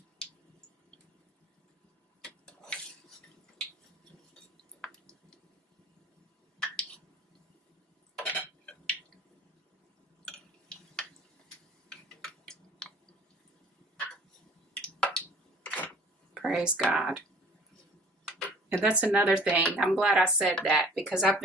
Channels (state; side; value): normal; both; correlation 0.49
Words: Praise God. And that's another thing. I'm glad I said that because I've